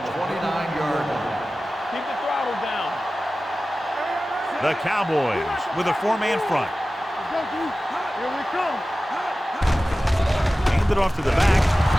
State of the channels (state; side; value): normal; both; correlation 0.96